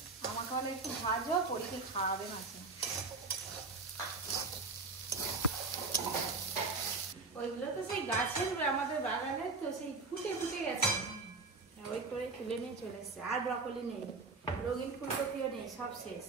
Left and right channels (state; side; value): quieter; left; 3.9 dB